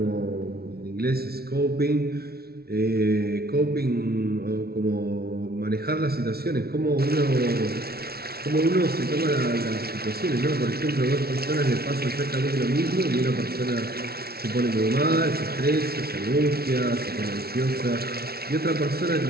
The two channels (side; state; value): left; late; 0.45 ms